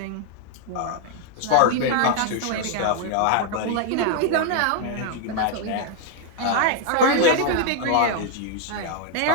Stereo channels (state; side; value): different; both; correlation 0.00